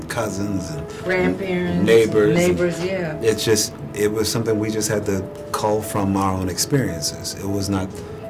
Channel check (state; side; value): identical; both; correlation 1.00